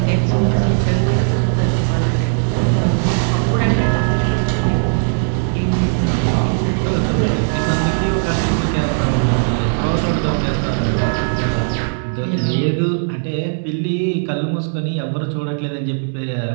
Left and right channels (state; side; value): silent; left; digital silence